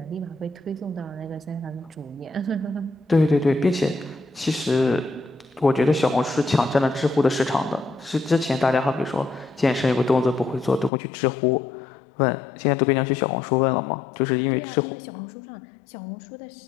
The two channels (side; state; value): right; drops out; at 10.9 s